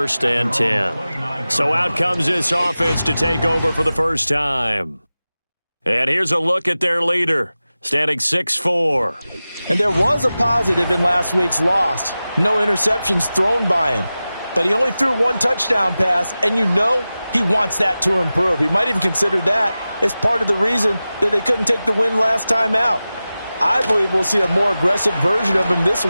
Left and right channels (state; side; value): inverted; both; correlation -0.95